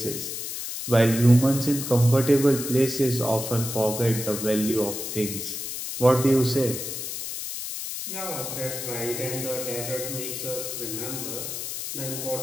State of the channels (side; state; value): left; noise; hiss, 6 dB below the sound